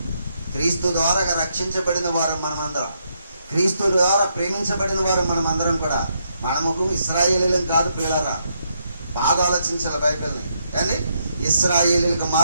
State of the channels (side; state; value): both; inverted; correlation -0.77